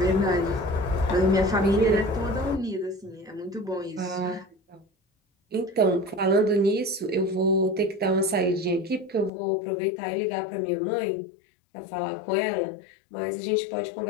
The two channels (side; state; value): right; drops out; at 9.3 s